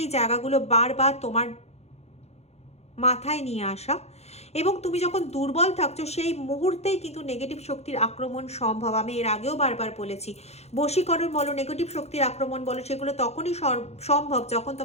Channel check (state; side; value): late; right; 0.31 ms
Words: জায়গাগুলো বারবার তোমার মাথায় নিয়ে আসা, এবং তুমি যখন দুর্বল থাকছো সেই মুহূর্তেই কিন্তু নেগেটিভ শক্তির আক্রমণ সম্ভব। আমি এর আগেও বারবার বলেছি, বশীকরণ বলো, নেগেটিভ শক্তির আক্রমণ বলো, সেগুলো তখনই সম্ভব যখন